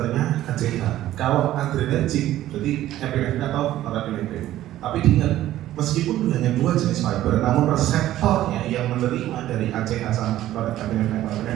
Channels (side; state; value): left; quieter; 13.8 dB